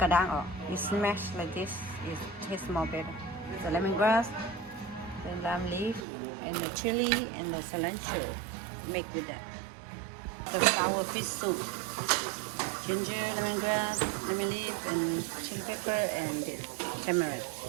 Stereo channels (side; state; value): left; drops out; at 6.1 s